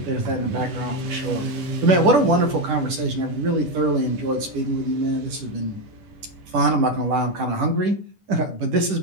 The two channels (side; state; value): left; late; 10 ms